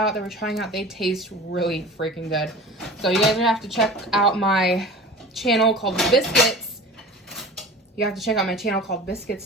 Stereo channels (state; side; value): normal; both; correlation 0.37